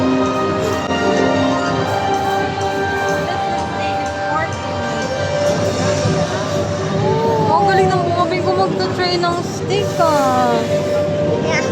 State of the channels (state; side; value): identical; both; correlation 1.00